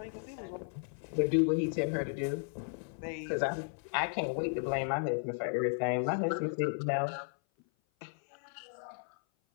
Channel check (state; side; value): silent; right; 55 dB below the other